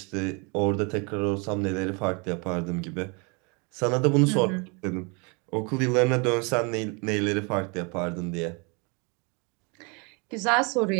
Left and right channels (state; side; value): quieter; left; 31.9 dB